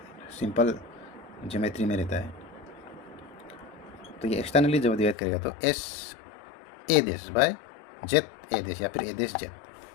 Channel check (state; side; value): drops out; right; at 5.2 s